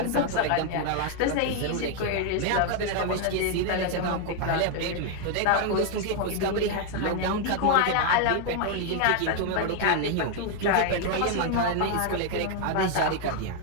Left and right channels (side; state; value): both; different; correlation 0.00